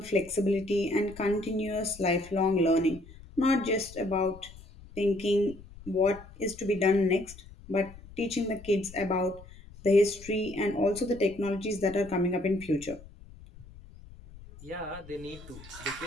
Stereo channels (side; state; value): left; noise; rumble, 19 dB below the sound